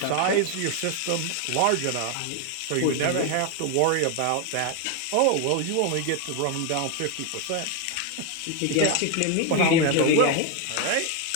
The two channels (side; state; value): both; different; correlation 0.01